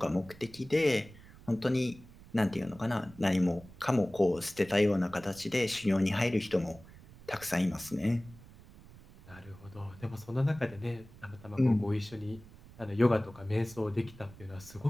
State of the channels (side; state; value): right; noise; rumble, 20 dB below the sound